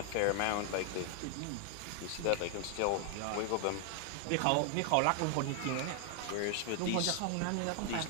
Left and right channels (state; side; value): different; both; correlation 0.00